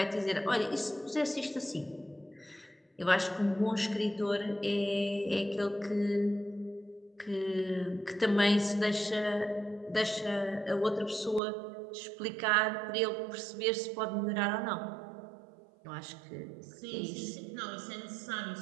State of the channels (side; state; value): left; drops out; at 11.4 s